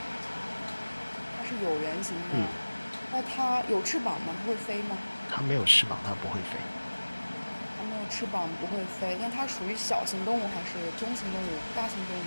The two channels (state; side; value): inverted; both; correlation -1.00